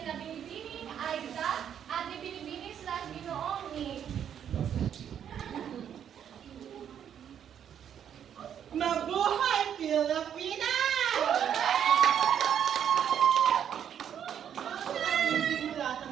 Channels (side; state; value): left; quieter; 9.0 dB